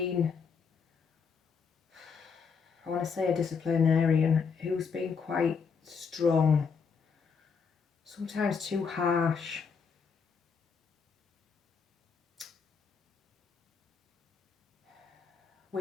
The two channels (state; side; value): quieter; right; 5.8 dB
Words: I want to say a disciplinarian, who's been quite strong, sometimes too harsh.